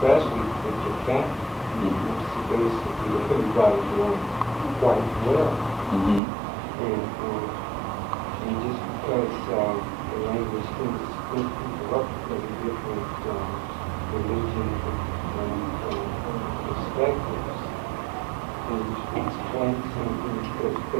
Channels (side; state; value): left; drops out; at 6.2 s